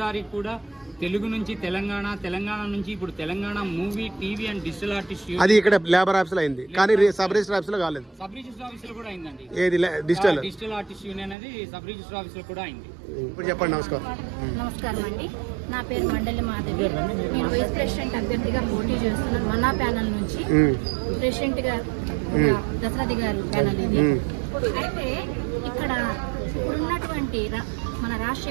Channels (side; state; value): left; drops out; at 11.4 s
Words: కూడా తెలుగు నుంచి తెలంగాణ, తెలంగాణ నుంచి ఇప్పుడు Telangana movie TV and digital artist అది ఇక్కడ లేబర్ ఆఫీస్ లో అయింది, కానీ సబ్ రిజిస్టర్ ఆఫీస్ లో కాలేదు. సబ్ రిజిస్టర్ ఆఫీస్ లో కూడా అయిందండి. ఏది డిజిటల్ ఆర్టిస్ట్ యూనియన్ అనేది సబ్ రిజిస్టర్ ఆఫీస్ లో కూడా అయింది. ఇప్పుడు చెప్పండి. నమస్కారం అండి, నా పేరు మండలి మాధవి. నేను వైస్ ప్రెసిడెంట్ అభ్యర్థిగా పోటీ చేస్తున్నాను. మన్నా ప్యానల్ నుంచి ప్రెసిడెంట్ గా దశరథి గారు ప్యానల్ ఇది. అయితే ఇక్కడ ఇప్పుడున్నటువంటి మన